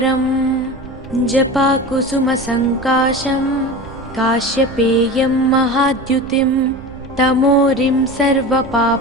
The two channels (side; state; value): right; noise; rumble, 19 dB below the sound